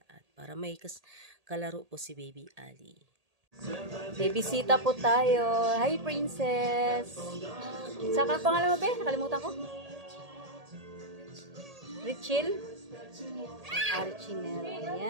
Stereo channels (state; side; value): late; left; 1.8 ms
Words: at para may kalaro po si Baby Ali. May bisita po tayo. Hi, Princess! Saka pangalan mo, be? Nakalimutan ko. Richel? Archiner.